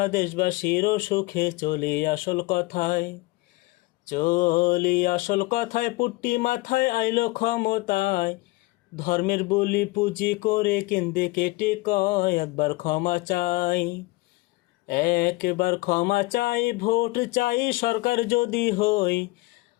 দেশবাসীর সুখে। চলি আসল কথায় পুট্টি মাথায় আইলো ক্ষমতায়। ধর্মের বলি পুঁজি করে কেন্দ্রে কেটে কয় একবার ক্ষমা চাই ভোট চাই সরকার যদি হই।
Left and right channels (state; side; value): quieter; right; 22.5 dB